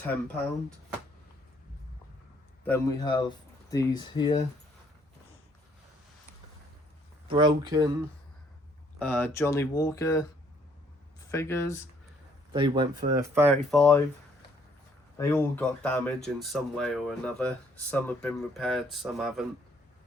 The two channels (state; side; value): normal; both; correlation 0.65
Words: Then we have these here, broken Johnny Walker figures. They went for 35. They all got damage in some way or another. Some have been repaired, some haven't.